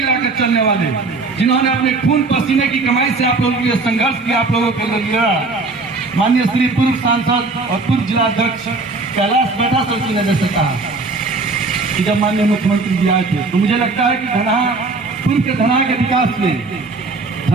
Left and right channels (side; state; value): left; quieter; 3.7 dB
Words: चलने वाले, जिन्होंने अपने खून पसीने की कमाई से आप लोगों के लिए संघर्ष किया, आप लोगों के लिए माननीय श्री पूर्व सांसद और पूर्व जिला अध्यक्ष कैलाश बैठा सर की नजर से कहा कि जब माननीय मुख्यमंत्री जी आए थे, तो मुझे लगता है कि पूर्व के धना के विकास में